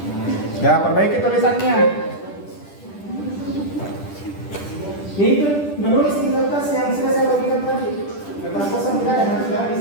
Ya, perbaiki tulisannya. Itu menulis di kertas yang sudah saya bagikan tadi. Kertas kosong tidak ada, harus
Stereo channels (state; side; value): late; right; 10 ms